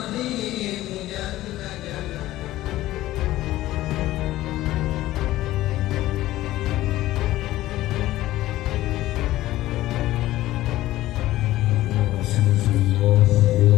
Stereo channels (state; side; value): quieter; right; 15.7 dB